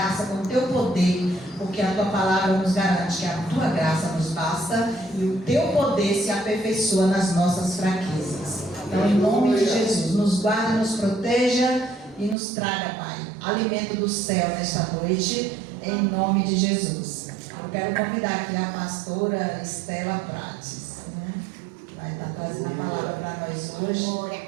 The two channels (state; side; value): drops out; left; at 12.4 s